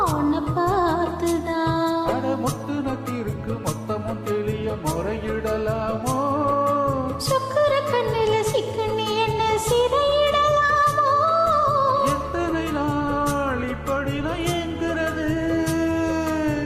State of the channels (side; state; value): both; identical; correlation 1.00